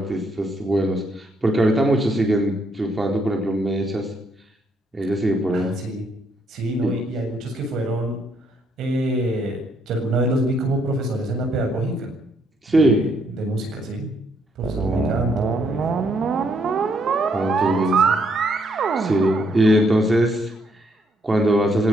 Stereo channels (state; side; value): normal; both; correlation 0.72